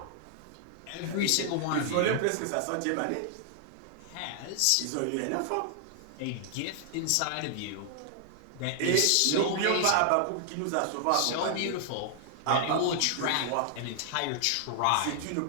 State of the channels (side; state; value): both; different; correlation 0.00